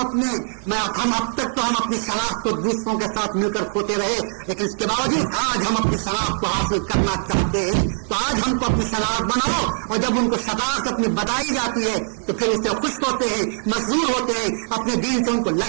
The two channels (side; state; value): left; silent; digital silence